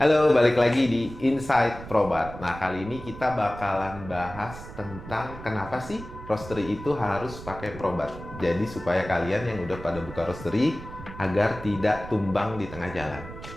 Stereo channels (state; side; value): noise; right; rumble, 13 dB below the sound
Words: Halo, balik lagi di Inside Probat. Nah, kali ini kita bakalan bahas tentang kenapa sih roastery itu harus pakai Probat. Jadi supaya kalian yang udah pada buka roastery agar tidak tumbang di tengah jalan.